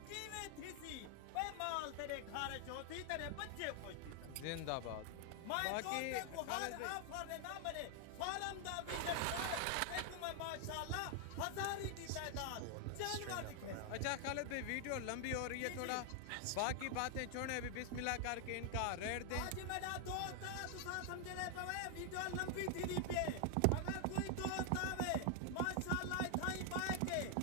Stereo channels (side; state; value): both; different; correlation 0.00